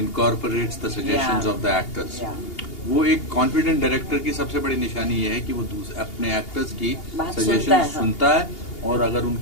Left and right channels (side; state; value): right; late; 2.8 ms